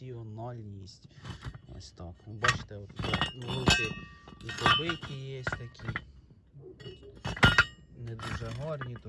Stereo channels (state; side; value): identical; both; correlation 1.00